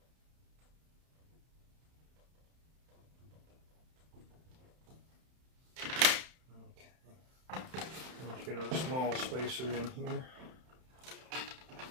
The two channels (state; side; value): late; left; 31 ms